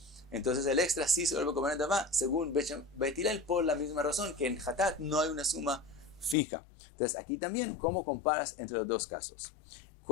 entonces el extra sí se vuelve Korban Nedavá según Bet Hillel, por la misma razón que en Hatat no hay una suma fija. Entonces aquí también, ¿cómo comparas entre los dos casos?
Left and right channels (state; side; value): drops out; right; at 6.4 s